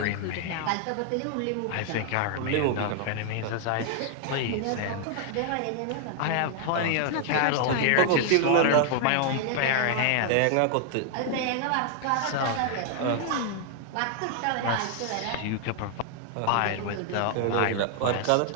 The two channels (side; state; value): both; different; correlation 0.00